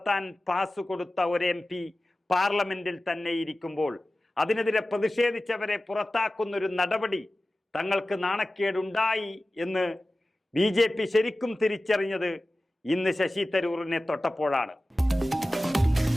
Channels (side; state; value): both; normal; correlation 0.96